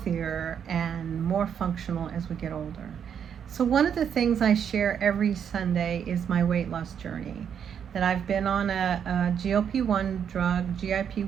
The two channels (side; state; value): left; quieter; 8.1 dB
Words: and more functional as we get older. So one of the things I share every Sunday is my weight loss journey. That I've been on a GLP-1 drug,